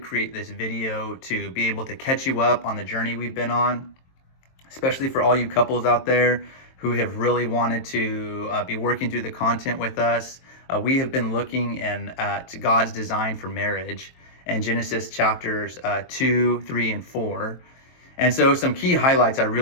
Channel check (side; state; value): right; late; 23 ms